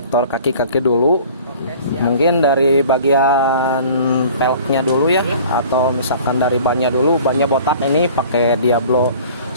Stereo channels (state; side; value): inverted; both; correlation -0.47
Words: kaki-kaki dulu. Oke, siap. Mungkin dari bagian peleknya dulu ya, atau misalkan dari bannya dulu. Bannya botak ini pakai Diablo